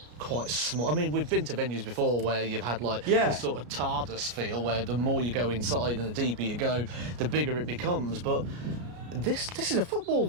quite small. I mean, we've been to venues before where you've had like this sort of TARDIS feel, where the more you go inside and the deeper you go, the bigger it becomes. But this is a football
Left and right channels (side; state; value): left; late; 33 ms